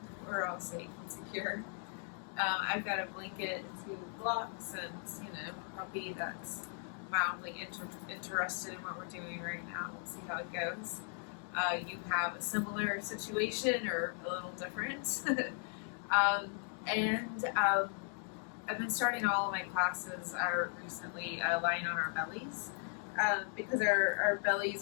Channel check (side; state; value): right; silent; 53 dB below the other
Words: we're all safe and secure. I've got a blanket, 2 blocks, and, a puppy that's mildly interested in what we're doing right now. We'll see how it goes. You have a similar situation or a little different. I've been starting all of my classes recently lying on our bellies because our